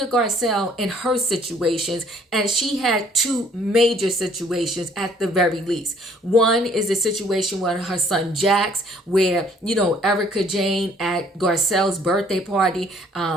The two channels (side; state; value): both; normal; correlation 0.60